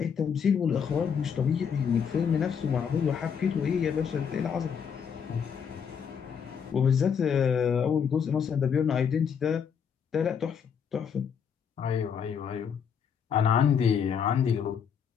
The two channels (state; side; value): quieter; right; 7.2 dB